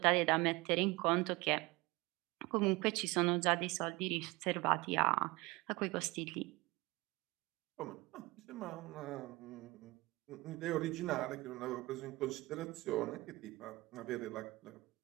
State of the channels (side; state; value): left; quieter; 22.1 dB